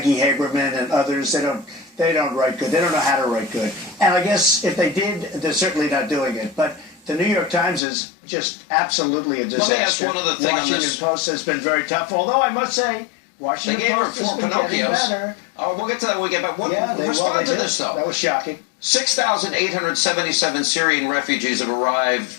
Haberman and others. They don't write good. They don't know how to write good. And I guess if they did, they're certainly not doing it. But the New York Times is just absolutely a disaster. Let me ask one other thing on this. Washington Post has been very tough, although I must say, Washington Post has been getting better. Oh, we'll get to that when we get back. Respond to this, though. That was shocking. 6,877 Syrian refugees have arrived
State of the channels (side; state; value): right; drops out; at 7.8 s